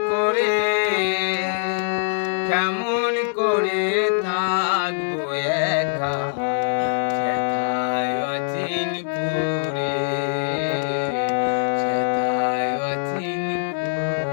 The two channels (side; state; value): right; silent; digital silence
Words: করে, কেমন করে থাকবো একা সেথায় অচিনপুরে, সেথায়